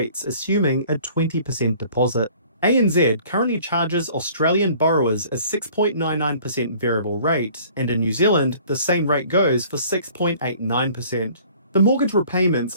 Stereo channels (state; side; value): inverted; both; correlation -0.53